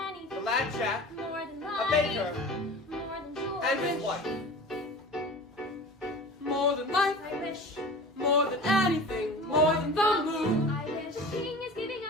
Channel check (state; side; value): normal; both; correlation 0.37